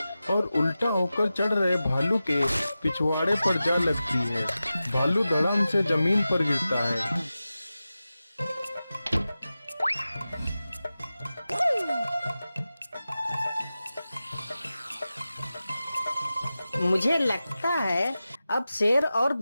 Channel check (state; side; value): inverted; both; correlation -0.94